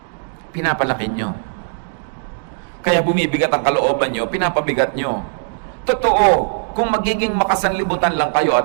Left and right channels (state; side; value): silent; left; digital silence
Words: pinapalaki nyo. Kaya bumibigat ang kalooban nyo, pinapabigat nyo. Totoo, kung magiging makasanlibutan lang kayo